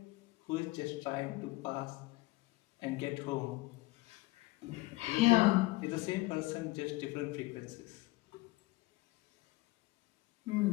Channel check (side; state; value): right; quieter; 20.8 dB